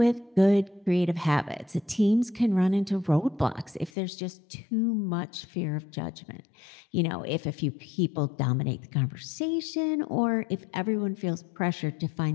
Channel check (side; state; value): right; drops out; at 3.9 s